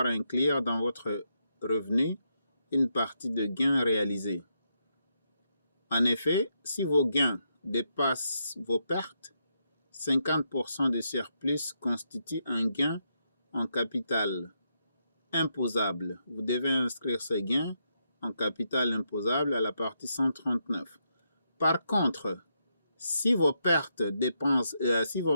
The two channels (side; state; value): both; inverted; correlation -0.80